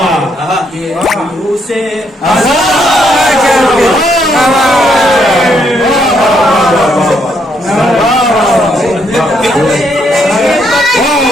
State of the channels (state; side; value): normal; both; correlation 0.74